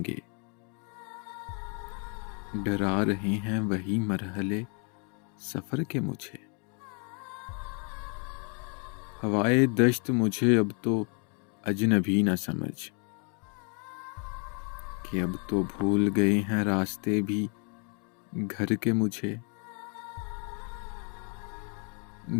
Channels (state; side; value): quieter; right; 38.4 dB